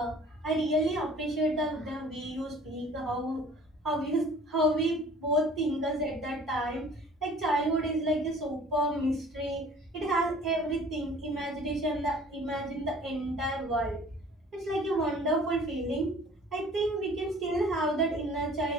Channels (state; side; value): normal; both; correlation 0.50